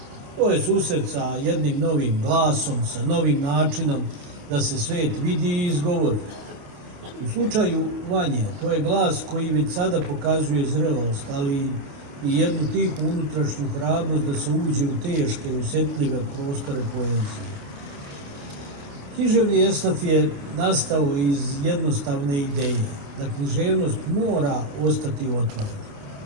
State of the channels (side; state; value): left; late; 28 ms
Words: To je susret sa jednim novim glasom, sa novim načinom da se svet vidi i izgovori. U slučaju Vanje, to je glas koji već sada pokazuje zrelost, ali i jednu tihu unutrašnju hrabrost da se uđe u teške i osjetljive prostore poezije. Književni esnaf je nastao iz jednostavne ideje da književnost mora ostati otvorena.